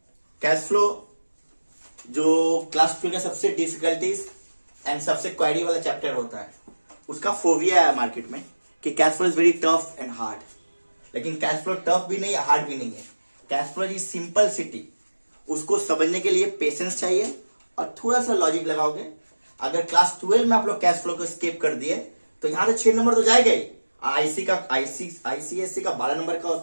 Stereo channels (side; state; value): both; inverted; correlation -1.00